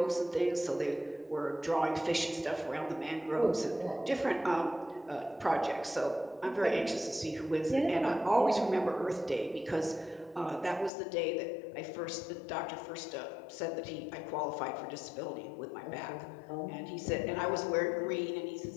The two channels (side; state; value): right; drops out; at 10.9 s